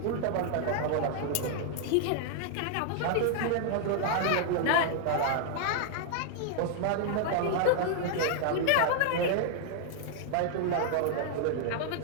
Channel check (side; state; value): both; different; correlation 0.00